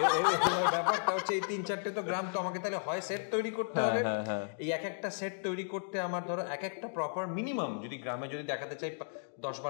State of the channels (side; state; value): right; silent; digital silence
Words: এবার ব্যাপারটা হচ্ছে এই 3-4টে তো গ্রাম তো আমাকে তাহলে হয় সেট তৈরি করতে হবে। এই একটা সেট তৈরি করতে আমার ধরো একটা প্রপার মিনিমাম, যদি গ্রামে যদি দেখাতে চাই